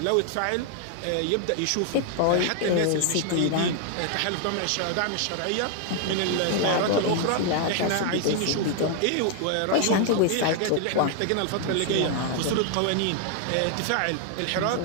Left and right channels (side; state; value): both; different; correlation 0.00